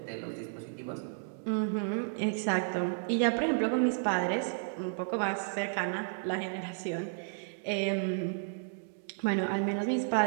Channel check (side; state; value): left; silent; digital silence